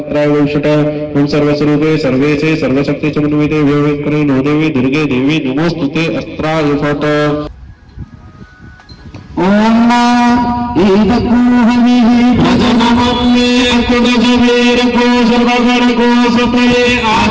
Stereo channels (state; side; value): identical; both; correlation 1.00